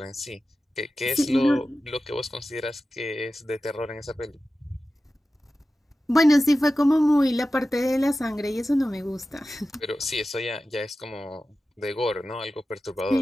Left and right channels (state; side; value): normal; both; correlation 0.94